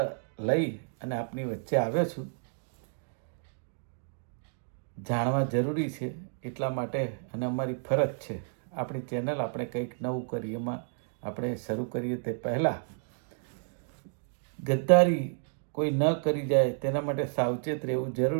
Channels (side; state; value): left; silent; digital silence